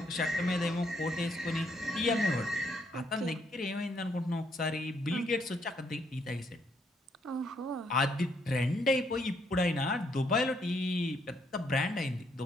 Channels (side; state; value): both; normal; correlation 0.72